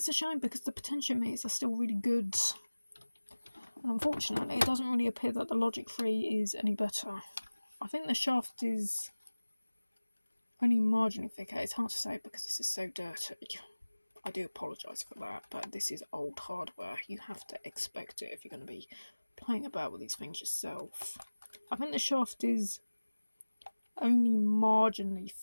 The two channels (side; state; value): both; inverted; correlation -1.00